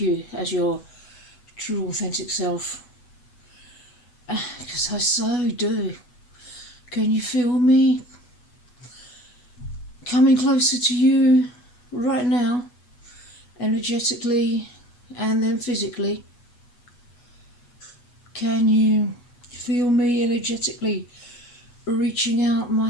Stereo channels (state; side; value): late; right; 8.2 ms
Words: you as your true authentic self. Because I so do. Can you feel me coming closer to you right now? Energetically and then physically. Can you feel me energetically reaching out my